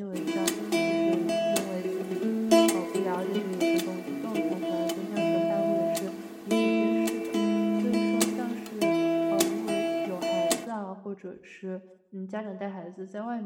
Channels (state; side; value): identical; both; correlation 1.00